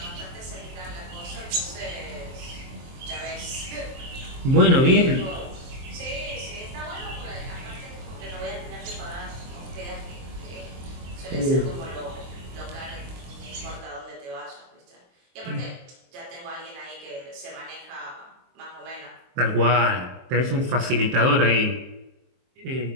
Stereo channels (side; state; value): left; late; 23 ms